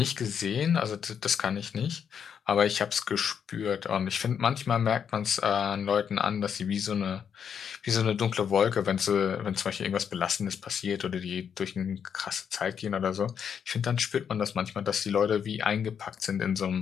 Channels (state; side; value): quieter; right; 7.6 dB